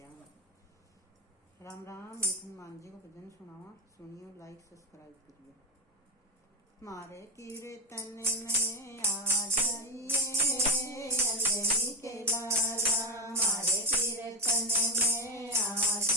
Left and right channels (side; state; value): both; normal; correlation 0.17